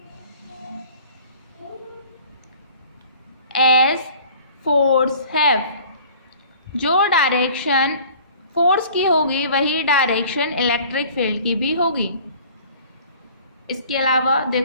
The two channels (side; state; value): both; inverted; correlation -0.49